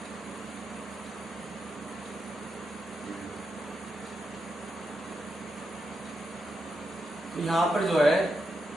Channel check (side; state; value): both; normal; correlation 0.85